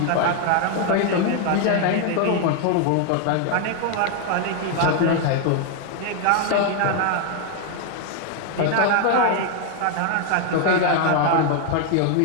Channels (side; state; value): both; different; correlation 0.00